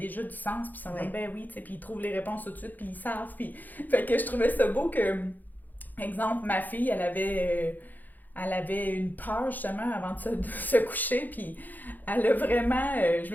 du sens. Puis ils sont comme, ben oui, tu sais, puis ils trouvent les réponses tout de suite, puis ils savent. Puis fait que je trouvais ça beau que, exemple, ma fille, elle avait une peur justement avant de se coucher, puis elle a vraiment, je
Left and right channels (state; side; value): late; right; 0.085 ms